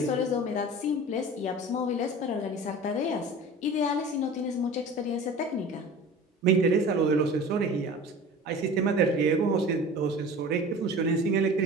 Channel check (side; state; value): both; normal; correlation 0.38